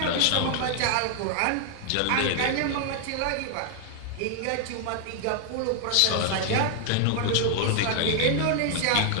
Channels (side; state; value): both; different; correlation 0.00